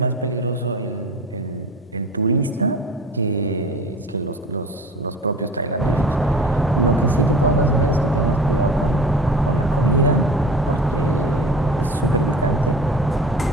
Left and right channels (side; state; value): both; normal; correlation 0.39